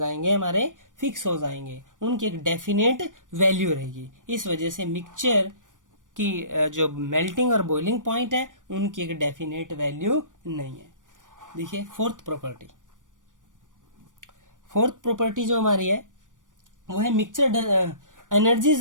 हमारे फिक्स हो जाएंगे, उनकी एक डेफिनेट वैल्यू रहेगी। इस वजह से मिक्सचर की जो मेल्टिंग और बॉइलिंग पॉइंट है उनकी एक डेफिनेट वैल्यू नहीं है। देखिए फोर्थ प्रॉपर्टी जो हमारी है वो है mixture energy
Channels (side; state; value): left; late; 0.88 ms